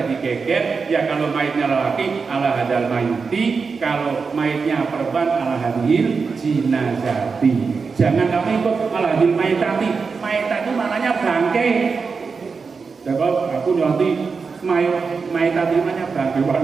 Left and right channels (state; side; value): quieter; left; 5.0 dB